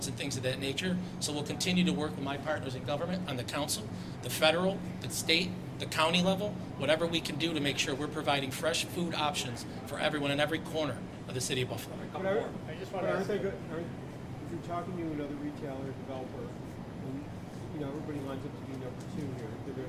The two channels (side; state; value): both; identical; correlation 1.00